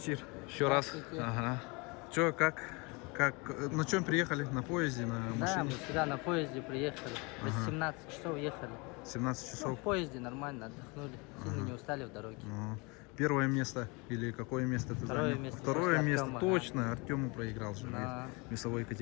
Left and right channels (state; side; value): quieter; right; 28.5 dB